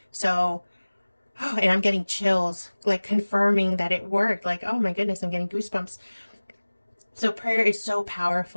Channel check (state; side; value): inverted; both; correlation -1.00